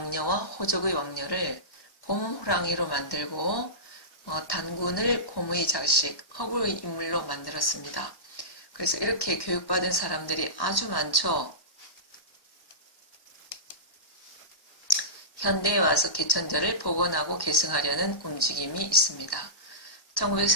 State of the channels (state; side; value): late; right; 1.1 ms